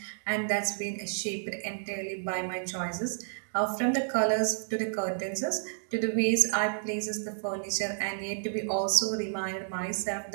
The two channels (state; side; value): silent; left; digital silence